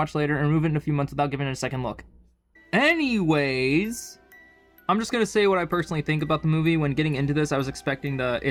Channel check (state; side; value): identical; both; correlation 1.00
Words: later and remove it in a few months without giving it a second look. Anyways, I'm just going to say what I personally think about the movie. When getting into this, I was expecting the